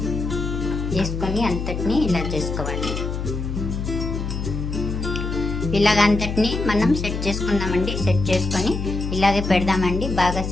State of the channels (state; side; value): noise; left; hum, 4 dB below the sound